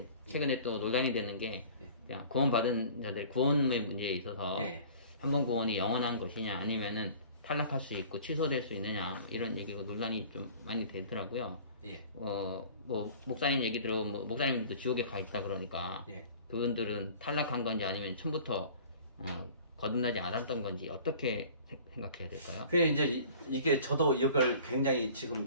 최근에 또 논란이 되는 게 그냥 구원받은 자들 구원의 문제에 있어서 한 번 구원이 영원한 것이냐 아니면은 탈락할 수 있고 취소될 수 있느냐 이런 얘기가 논란이 좀 많이 되더라고요. 뭐 목사님 얘기 들어보면 뭐 목사님들도 지옥에 가 있다 그러니까 그분들은 탈락한 건지 아니면 처음부터 거듭나지 않았던 건지 어떻게 생각해야 될까요? 그게 이제 이게 저도 이걸 굉장히 지금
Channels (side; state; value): both; inverted; correlation -0.46